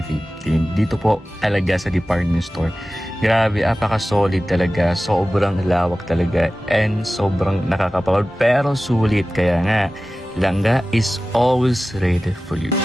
Dito po talaga sa department store. Grabe, apaka-solid talaga. Sobrang lawak talaga and sobrang nakakapagod. Pero sulit. Kaya nga, Langga is always ready for you.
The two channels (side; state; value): both; normal; correlation 0.96